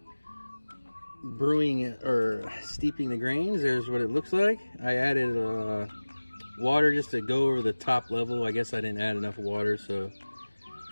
brewing or steeping the grains. There's what it looks like. I added water just to go over the top level. I guess I didn't add enough water, so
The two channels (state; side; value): inverted; both; correlation -1.00